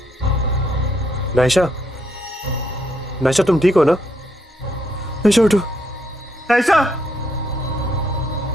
नायशा, नायशा तुम ठीक हो ना? नायशा उठो। नायशा!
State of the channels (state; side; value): normal; both; correlation 0.74